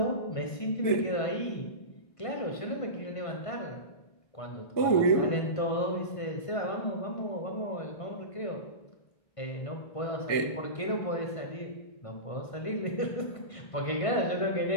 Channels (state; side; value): late; right; 1.5 ms